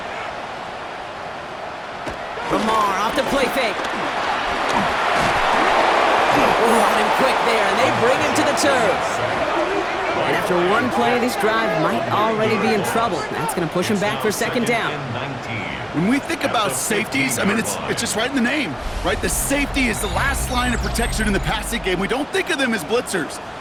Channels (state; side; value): identical; both; correlation 1.00